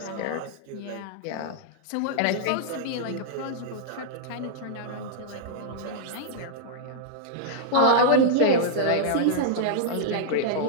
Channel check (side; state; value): both; different; correlation -0.01